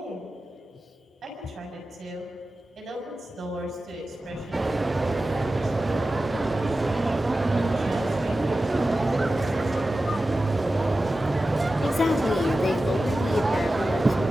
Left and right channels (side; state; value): both; normal; correlation 0.94